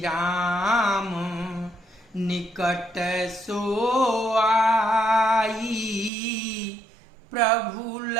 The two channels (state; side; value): drops out; left; at 6.1 s